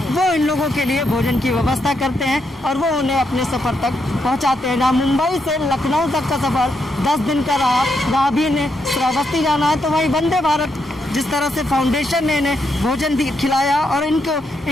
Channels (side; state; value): both; normal; correlation 0.80